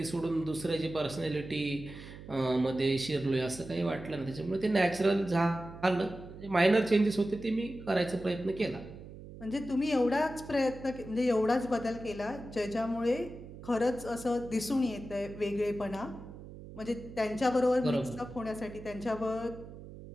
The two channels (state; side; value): noise; right; hum, 14 dB below the sound